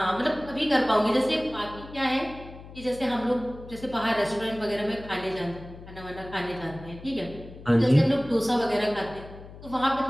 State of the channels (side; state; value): left; noise; hum, 16 dB below the sound